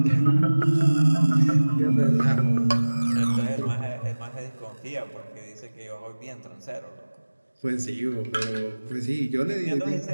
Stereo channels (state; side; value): inverted; both; correlation -1.00